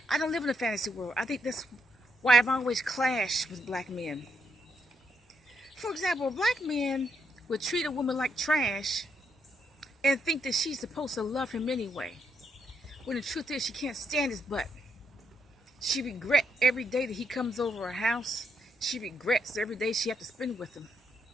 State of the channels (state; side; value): normal; both; correlation 0.77